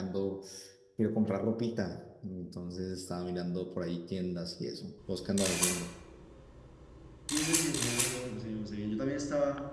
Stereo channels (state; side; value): identical; both; correlation 1.00